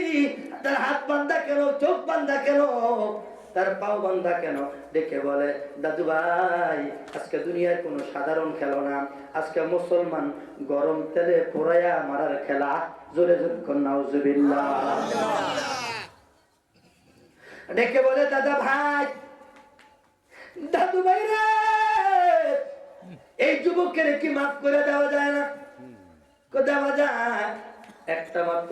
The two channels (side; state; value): both; identical; correlation 1.00